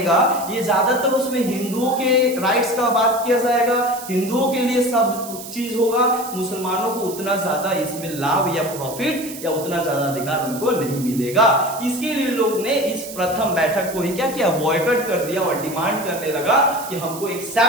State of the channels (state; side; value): noise; right; hiss, 12 dB below the sound